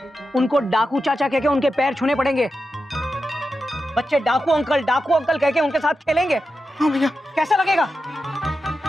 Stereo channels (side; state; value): both; normal; correlation 0.89